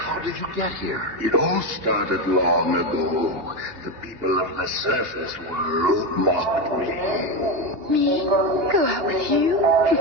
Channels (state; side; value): late; left; 2.9 ms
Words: did you get here? It all started long ago. The people of the surface world mocked me. Me? Go out with you?